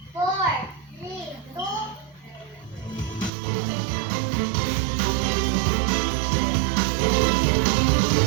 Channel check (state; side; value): drops out; left; at 3.3 s